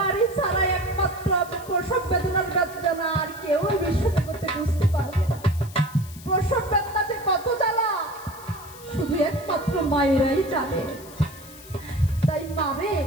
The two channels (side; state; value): left; noise; hiss, 19 dB below the sound